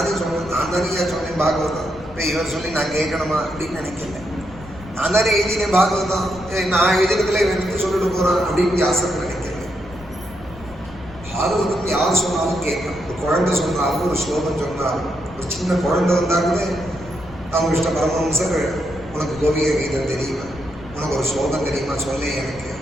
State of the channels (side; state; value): left; noise; rumble, 18 dB below the sound